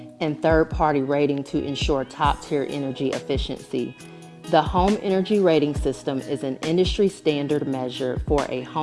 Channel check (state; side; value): identical; both; correlation 1.00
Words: and third-party rating to ensure top-tier energy efficiency. The Home Energy Rating System is an industry standard measure for a